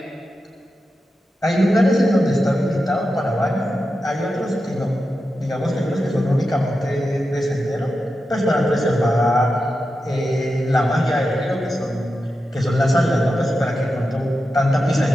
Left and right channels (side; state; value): both; normal; correlation 0.90